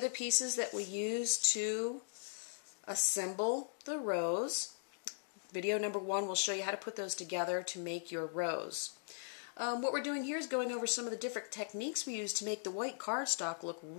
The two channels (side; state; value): right; silent; digital silence